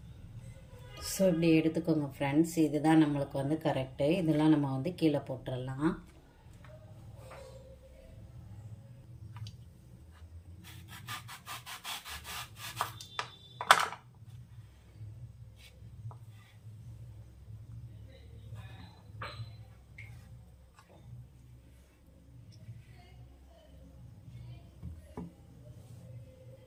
ஸோ இப்படி எடுத்துக்கோங்க ஃப்ரெண்ட்ஸ், இதுதான் நம்மளுக்கு வந்து கரெக்டு. இதெல்லாம் நம்ம வந்து கீழே போட்டுடலாம்.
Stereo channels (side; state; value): both; identical; correlation 1.00